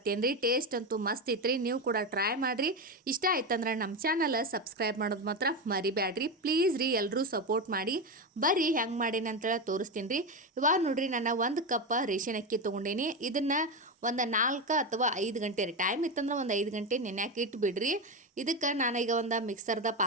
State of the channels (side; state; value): both; normal; correlation 0.15